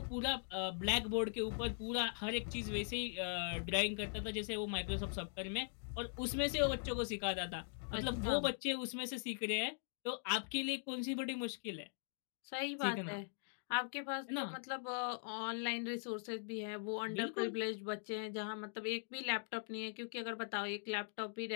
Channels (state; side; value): silent; right; digital silence